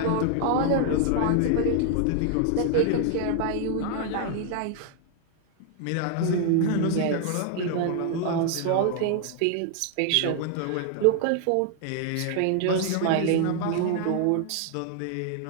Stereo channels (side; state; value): both; different; correlation 0.00